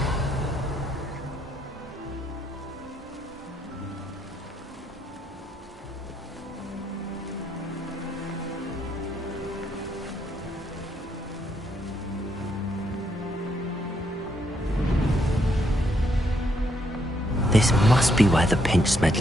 This must be where the Pinch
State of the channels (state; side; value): normal; both; correlation 0.74